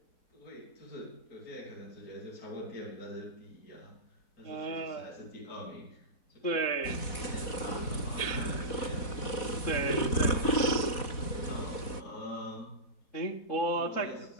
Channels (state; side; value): late; right; 4.1 ms